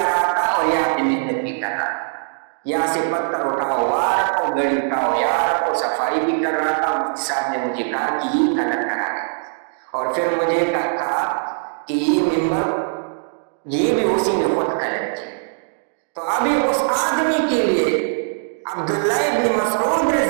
رہا تھا اور یہاں پہ محنت بھی کر رہا تھا، یہاں سے پتھر اٹھاؤ، وہاں رکھو، گڑی اٹھاؤ، یہاں رکھو، صفائی بھی کر رہا تھا۔ مفتی صاحب نے مجھے کہا کہ یہ کلر کرا ہے، اور پھر مجھے کہا کہ یہ ممبر یہ بھی اسی نے خود کلر کی۔ تو ابھی اس آدمی کے لیے عبداللہ ابن مسعود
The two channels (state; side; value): silent; left; digital silence